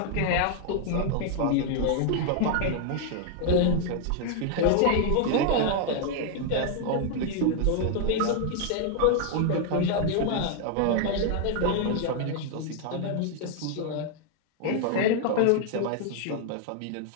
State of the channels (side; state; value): both; different; correlation 0.00